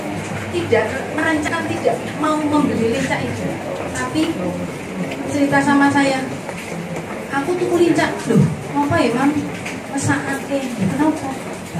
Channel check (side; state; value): both; identical; correlation 1.00